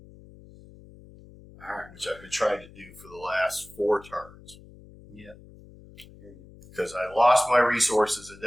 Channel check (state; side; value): noise; left; hum, 21 dB below the sound